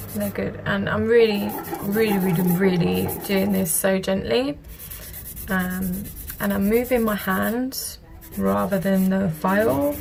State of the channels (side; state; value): both; identical; correlation 1.00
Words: they're good. And I'm really doing this so gently, and I'm moving my hand rather than the file